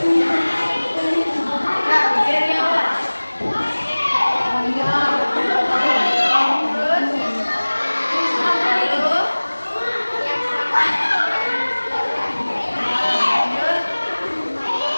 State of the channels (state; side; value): inverted; both; correlation -1.00